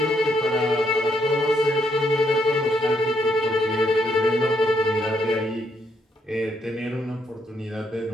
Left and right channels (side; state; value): both; normal; correlation 0.74